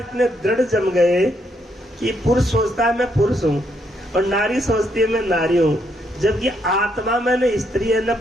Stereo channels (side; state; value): both; normal; correlation 0.75